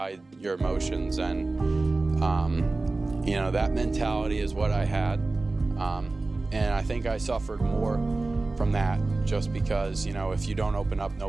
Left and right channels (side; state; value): left; quieter; 3.3 dB